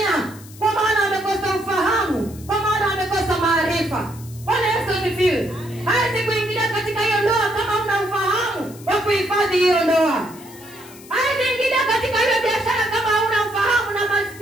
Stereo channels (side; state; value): left; noise; hiss, 20 dB below the sound